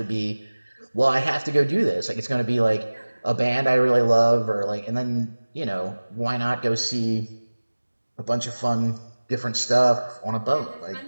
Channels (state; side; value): inverted; both; correlation -1.00